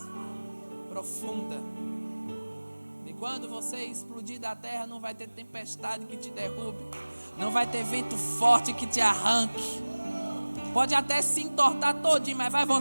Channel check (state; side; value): inverted; both; correlation -1.00